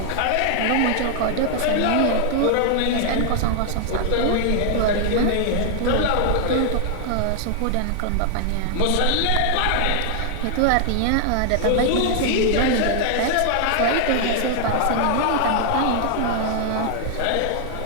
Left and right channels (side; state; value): both; different; correlation 0.00